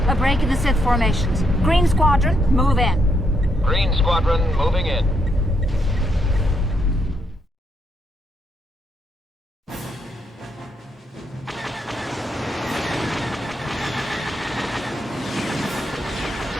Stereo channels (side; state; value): both; normal; correlation 0.77